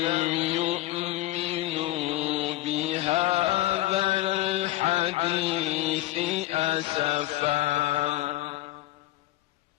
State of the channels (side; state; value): right; quieter; 16.6 dB